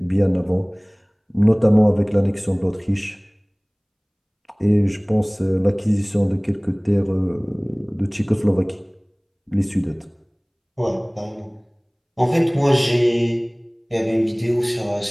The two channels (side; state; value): both; identical; correlation 1.00